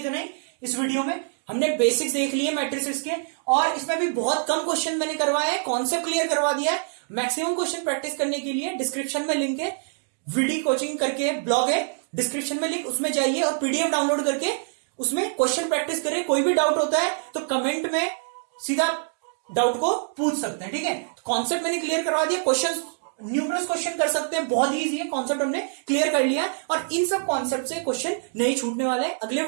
ही. इस वीडियो में हमने बेसिक्स देख लिए मैट्रिसेस के, और इसमें भी बहुत कम क्वेश्चन मैंने करवाए हैं, कॉन्सेप्ट क्लियर करवा दिया है. मैक्सिमम क्वेश्चन प्रैक्टिस करने के लिए डिस्क्रिप्शन में लिंक है, वीडियो कोचिंग करके ब्लॉग है डिस्क्रिप्शन में लिंक, उसमें जाइए और पीडीएफ डाउनलोड करके उसमें क्वेश्चन प्रैक्टिस करें. कोई भी डाउट होता है तो कमेंट में सीधा डाउट को पूछ सकते हैं. ठीक है, कॉन्सेप्ट मैंने क्लियर करवा दिया. क्वेश्चन न्यूमरस क्वेश्चन कर सकते हैं, बहुत इजी है. कॉन्सेप्ट हमने क्लियर कर लिया और इन सब कॉन्सेप्ट से क्वेश्चन नहीं छूटने वाले हैं. अगले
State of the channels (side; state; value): left; silent; digital silence